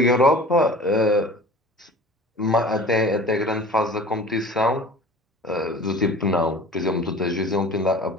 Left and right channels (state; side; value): normal; both; correlation 0.42